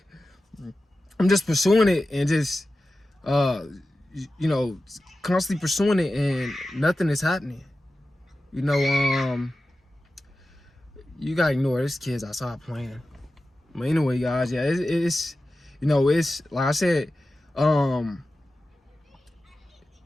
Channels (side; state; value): both; normal; correlation 0.93